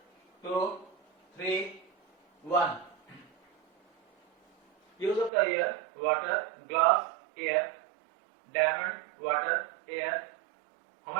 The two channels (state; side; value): drops out; left; at 5.3 s